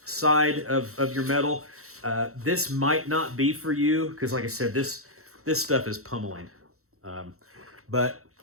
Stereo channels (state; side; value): late; left; 0.64 ms